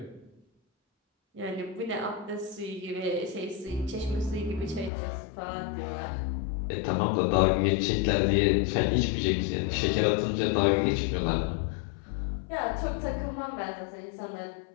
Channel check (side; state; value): right; drops out; at 4.9 s